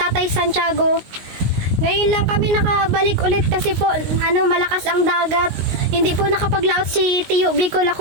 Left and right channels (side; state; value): left; late; 19 ms